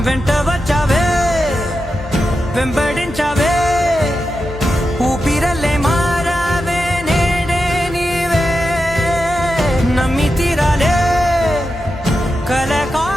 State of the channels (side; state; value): both; normal; correlation 0.89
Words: వెంట వచ్చావే వెంబడించావే ఊపిరల్లే మారావే నేడే నీవే నమ్మి తీరాలే కల